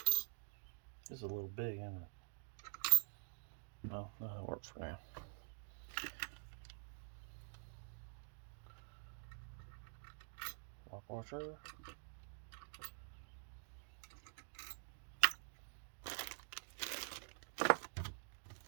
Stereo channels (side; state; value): left; silent; digital silence